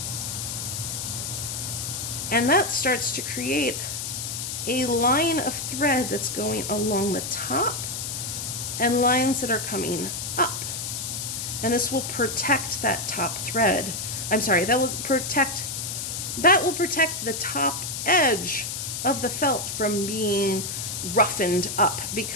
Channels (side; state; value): left; noise; hiss, 4 dB below the sound